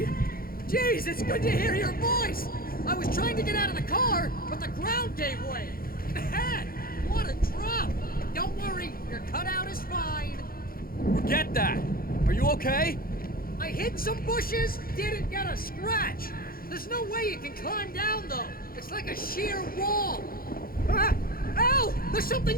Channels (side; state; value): right; late; 0.42 ms